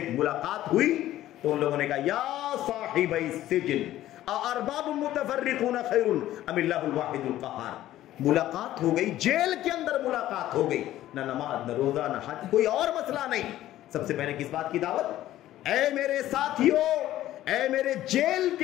ملاقات ہوئی تو ان لوگوں نے کہا یا صاحب السجن ارباب متفرقون خیر ام اللہ الواحد القہار۔ ملاقات ہو گئی، جیل کے اندر ملاقات ہو گئی، نہ نماز نہ روزہ نہ حج، کوئی اور مسئلہ نہیں۔ سب سے پہلے کس بات کی دعوت؟ اے میرے ساتھیوں، اے میرے جیل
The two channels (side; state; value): right; quieter; 13.9 dB